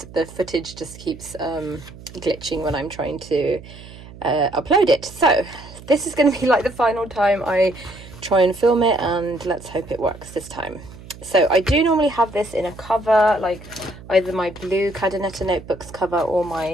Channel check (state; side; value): noise; right; hum, 17 dB below the sound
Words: the footage just keeps glitching when I'm trying to upload it. So this is going to be like the final time I try and film it, and let's hope it works this time. So I do normally have this in a cover, like either my blue Cadernetta Notebooks cover or